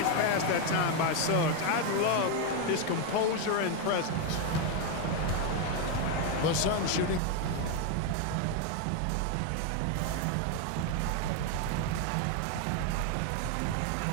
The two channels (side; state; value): both; different; correlation 0.01